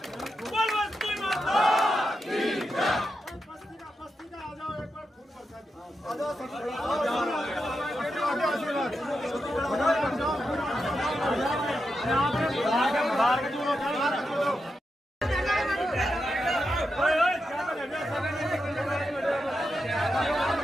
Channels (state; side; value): normal; both; correlation 0.87